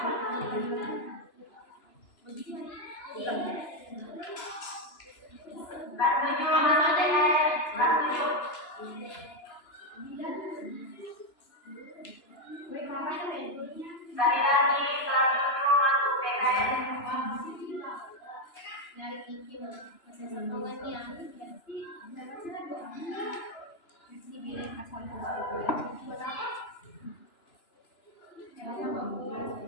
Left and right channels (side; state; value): right; late; 2.9 ms